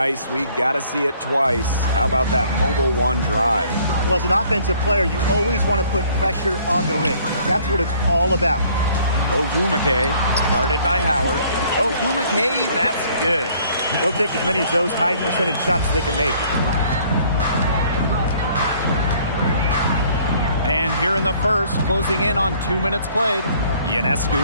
we got to see it twice. How about that mobile one drive? Well, as an offensive player, you always want to put pressure on the rim. That's what it's all about. Ogumake, guarded by Howard. Ogumake, that's good. They'll take as many of those high percentage shots as they can make. And here in the first, closing in on 2 minutes played.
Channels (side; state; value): both; inverted; correlation -0.59